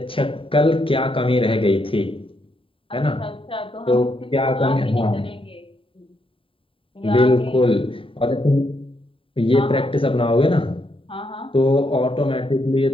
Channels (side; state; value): right; late; 0.26 ms